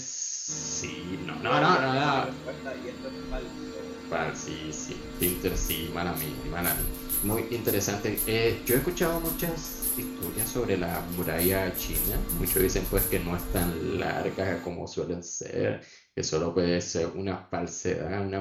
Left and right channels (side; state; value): both; identical; correlation 1.00